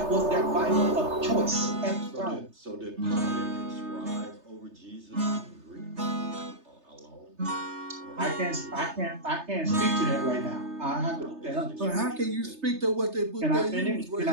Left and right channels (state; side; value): late; left; 3.3 ms